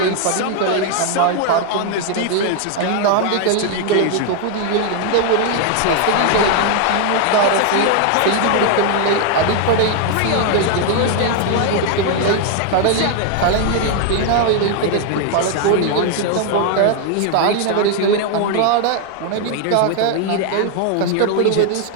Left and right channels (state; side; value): different; both; correlation 0.00